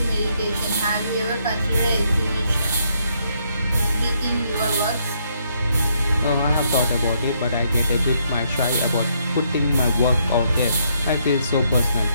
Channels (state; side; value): inverted; both; correlation -0.74